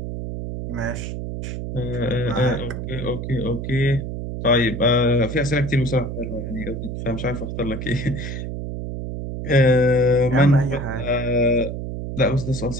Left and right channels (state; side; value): noise; right; hum, 6 dB below the sound